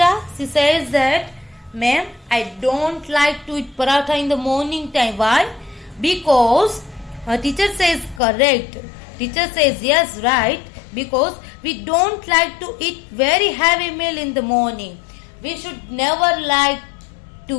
she says that, ma'am, I don't like to eat paratha in the morning time. Why? Because her teacher says correct. Teacher says yes, right. Because we don't like to eat very heavy meal in the morning. We should never like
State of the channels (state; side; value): drops out; right; at 8.2 s